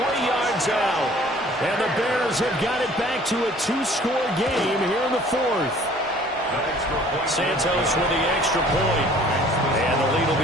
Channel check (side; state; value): both; normal; correlation 0.53